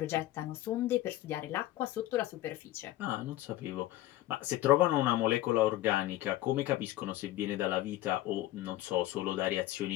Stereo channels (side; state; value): right; quieter; 15.4 dB